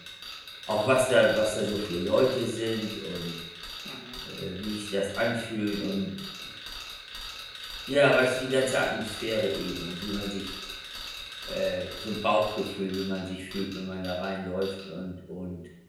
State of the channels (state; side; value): identical; both; correlation 1.00